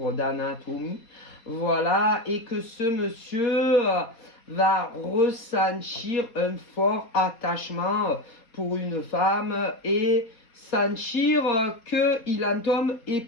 d'anatomie, voilà, et que ce monsieur va ressentir un fort attachement pour une femme et sentir qu'il en tombe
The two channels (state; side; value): late; right; 4.2 ms